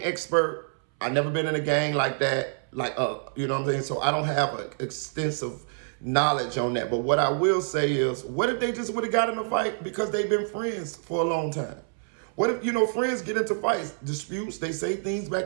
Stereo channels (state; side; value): silent; left; 60 dB below the other